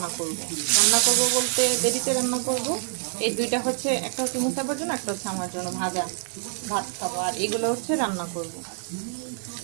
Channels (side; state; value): left; silent; digital silence